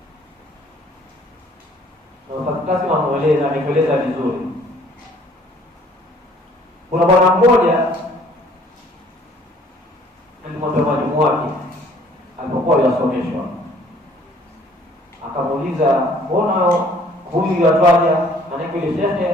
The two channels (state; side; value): normal; both; correlation 0.57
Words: Na utakasi ameeleza vizuri. Kuna bwana mmoja alimwambia mwalimu wake alipokuwa yasomeshwa, akamuuliza, mbona huyu yatwaja? Maana ile